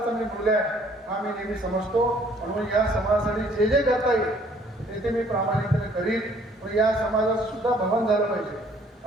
मी मूल्य आहे हा मी नेहमी समजतो. म्हणून या समाजासाठी जे जे करता येईल ते मी प्रामाणिकपणे करीन. पण या समाजाचं सुद्धा भवन झालं पाहिजे.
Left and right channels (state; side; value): normal; both; correlation 0.60